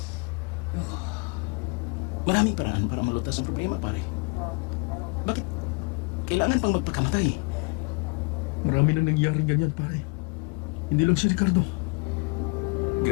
Maraming paraan para malutas ang problema, pare. Bakit kailangan pang magpakamatay? Marami nang nangyaring ganyan, pare. Hindi lang si Ricardo.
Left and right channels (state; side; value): quieter; right; 29.6 dB